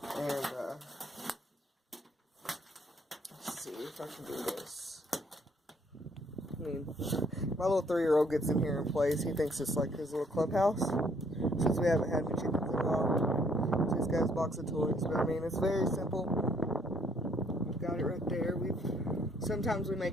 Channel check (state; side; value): normal; both; correlation 0.66